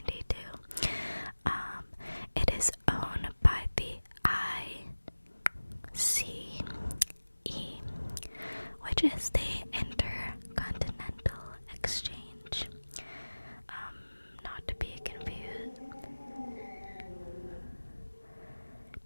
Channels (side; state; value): both; inverted; correlation -1.00